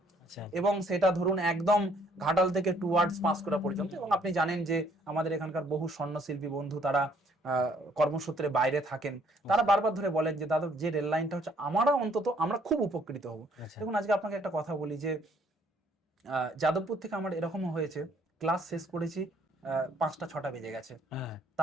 আচ্ছা, এবং সেটা ধরুন একদম ঘাটাল থেকে টুয়ার্ডস পাঁশকুড়া পর্যন্ত। এবং আপনি জানেন যে আমাদের এখানকার বহু স্বর্ণশিল্পী বন্ধু, তারা কর্মসূত্রে বাইরে থাকেন, তারা বারবার ধরে বলেন যে দাদা, যে রেল লাইনটা হচ্ছে, আমরা খুব উপকৃত হব। আচ্ছা। দেখুন, আজকে আপনাকে একটা কথা বলি যে যাদবপুর থেকে আমার এরকমও হয়েছে, ক্লাস শেষ করেছি, 5টা 6টা বেজে গেছে, হ্যাঁ,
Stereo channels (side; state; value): both; normal; correlation 0.64